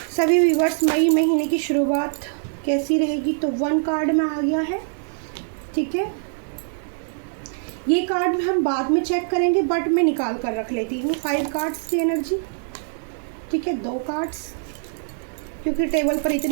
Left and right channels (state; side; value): silent; left; digital silence